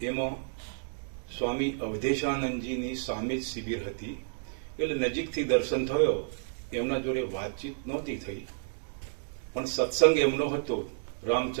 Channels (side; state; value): left; silent; digital silence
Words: એમાં સ્વામી અવધેશાનંદજીની સામે જ શિબિર હતી એટલે નજીકથી દર્શન થયો. એમના જોડે વાતચીત નહોતી થઈ, પણ સત્સંગ એમનો હતો